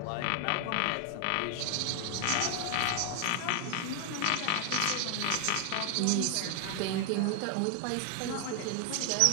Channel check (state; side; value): different; both; correlation 0.00